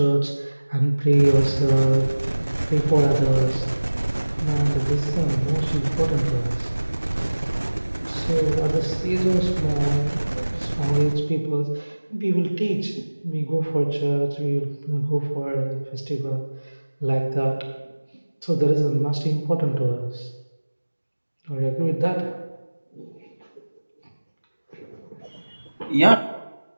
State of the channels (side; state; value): both; inverted; correlation -1.00